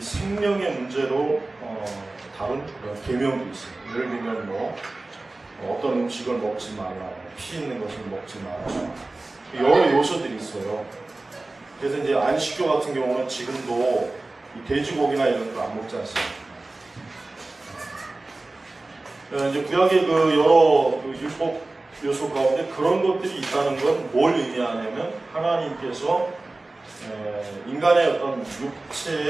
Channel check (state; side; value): quieter; left; 3.1 dB